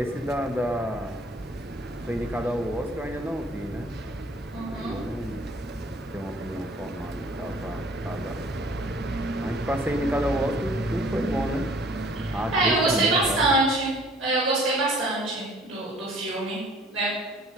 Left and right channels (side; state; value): both; normal; correlation 0.54